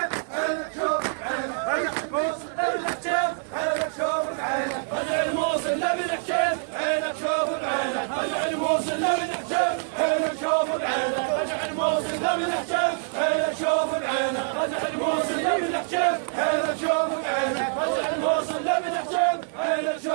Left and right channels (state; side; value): silent; left; digital silence